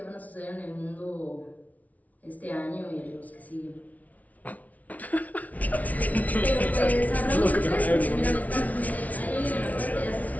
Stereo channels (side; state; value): right; late; 0.071 ms